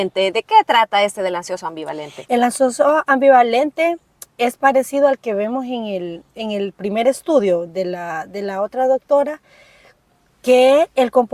¿De qué trata del ansioso ambivalente? El ansioso ambivalente es parecido al que vemos en el primer estudio de la otra doctora, que el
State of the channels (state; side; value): identical; both; correlation 1.00